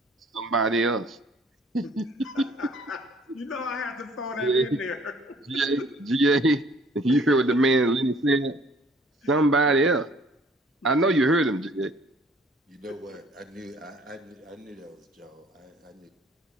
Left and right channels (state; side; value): normal; both; correlation 0.57